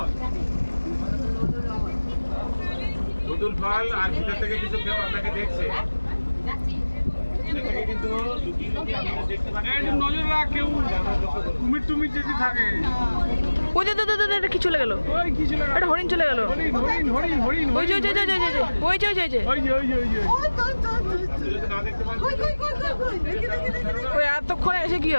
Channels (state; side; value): inverted; both; correlation -1.00